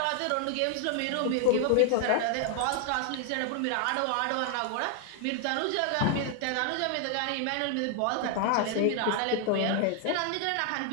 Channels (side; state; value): both; different; correlation 0.00